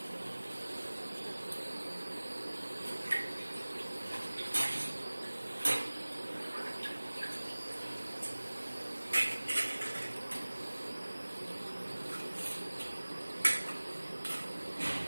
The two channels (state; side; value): inverted; both; correlation -1.00